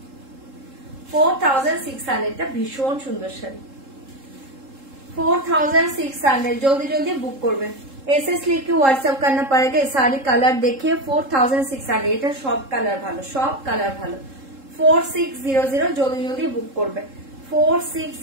4600 এটা ভীষণ সুন্দর শাড়ি 4600 जल्दी जल्दी बुक করবে एसएस लिख के व्हाट्सएप करना पड़ेगा सारी कलर देखिए 4600 এটা সব কালার ভালো সব কালার ভালো 4600 जल्दी जल्दी बुक করবে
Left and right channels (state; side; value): late; left; 3.7 ms